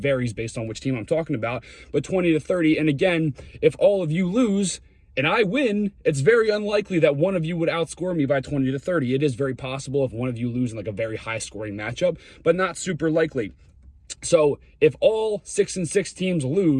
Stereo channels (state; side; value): identical; both; correlation 1.00